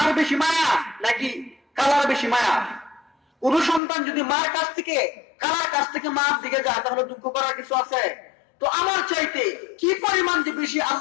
বেশি মায়া নাকি কালার বেশি মায়া? কোন সন্তান যদি মার কাছ থেকে কালার কাছ থেকে মার দিকে যায়, তাহলে দুঃখ করার কিছু আছে? তো আমার চাইতে কি পরিমাণ যে বেশি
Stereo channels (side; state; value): right; drops out; at 3.8 s